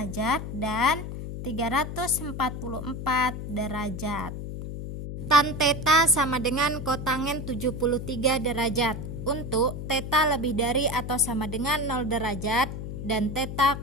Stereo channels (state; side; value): noise; left; hum, 7 dB below the sound